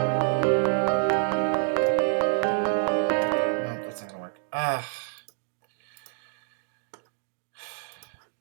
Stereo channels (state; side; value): silent; left; 60 dB below the other